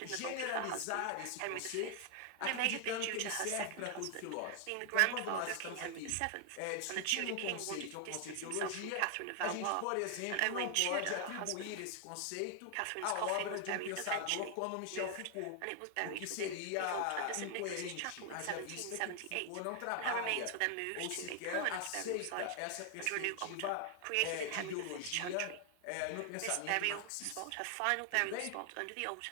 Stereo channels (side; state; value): both; different; correlation 0.00